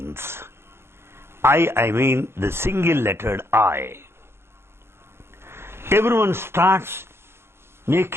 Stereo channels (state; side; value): late; left; 0.12 ms